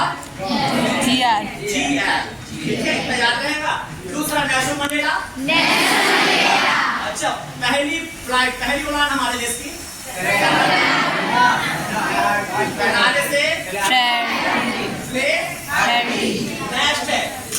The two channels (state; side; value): identical; both; correlation 1.00